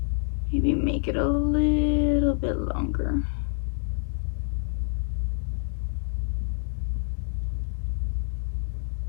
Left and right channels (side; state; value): right; silent; digital silence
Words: maybe make it a little bit longer.